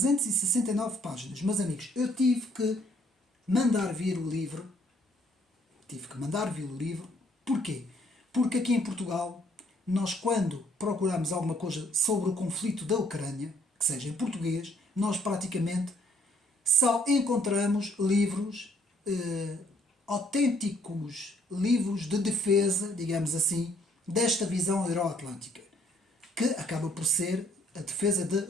páginas. Meus amigos, eu tive que mandar vir o livro. Porquê? Porque aqui em Portugal, nós quando procuramos alguma coisa sobre o conflito da Ucrânia, que seja em português, nós praticamente só encontramos livros, autênticos livros de defesa, digamos assim, desta visão euroatlântica, que acaba por ser a defesa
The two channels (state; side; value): normal; both; correlation 0.65